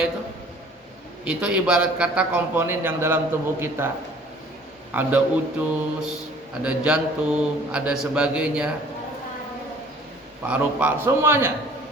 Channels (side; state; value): both; normal; correlation 0.52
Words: itu ibarat kata komponen yang dalam tubuh kita. Ada usus, ada jantung, ada sebagainya, paru-paru, semuanya.